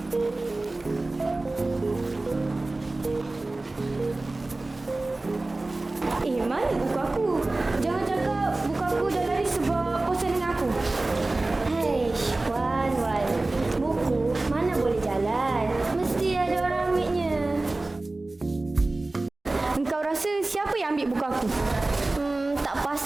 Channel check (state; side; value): quieter; left; 3.0 dB